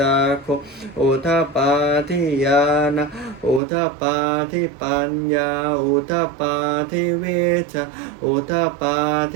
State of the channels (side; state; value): left; drops out; at 3.6 s